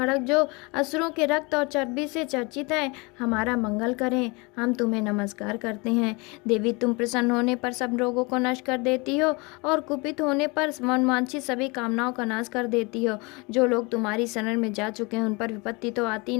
जो असुरों के रक्त और चर्बी से चर्चित है, हमारा मंगल करें। हम तुम्हें नमस्कार करते हैं। देवी, तुम प्रसन्न होने पर सब रोगों को नष्ट कर देती हो और कुपित होने पर मनवांछित सभी कामनाओं का नाश कर देती हो। जो लोग तुम्हारी शरण में जा चुके हैं उन पर विपत्ति तो आती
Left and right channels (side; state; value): right; quieter; 27.6 dB